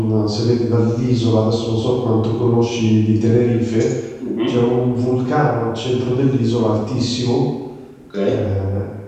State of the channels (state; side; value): identical; both; correlation 1.00